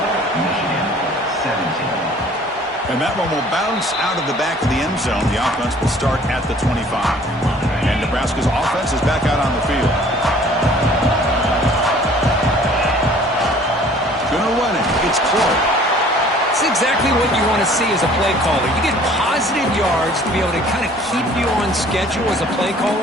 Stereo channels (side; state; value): both; normal; correlation 0.53